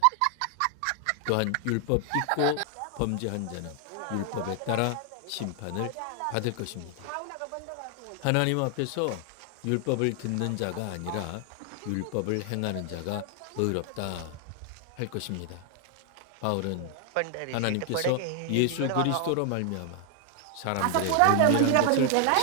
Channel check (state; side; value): different; both; correlation 0.00